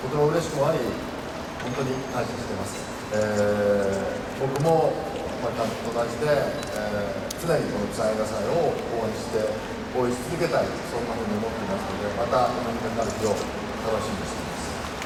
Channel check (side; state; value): both; identical; correlation 1.00